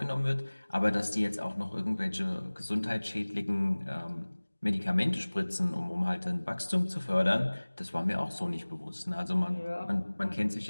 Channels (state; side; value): inverted; both; correlation -1.00